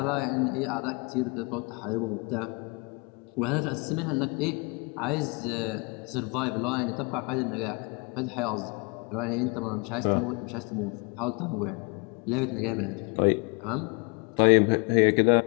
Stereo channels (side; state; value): right; quieter; 31.4 dB